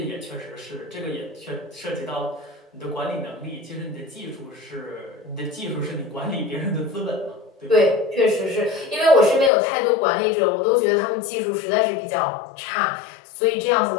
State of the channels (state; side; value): drops out; right; at 9.5 s